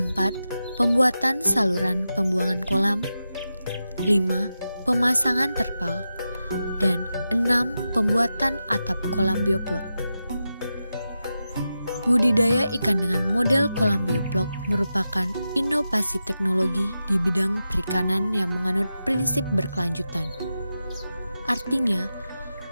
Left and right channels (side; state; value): both; inverted; correlation -0.90